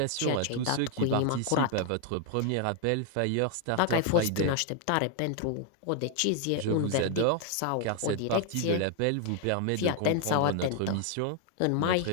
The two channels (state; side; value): different; both; correlation 0.00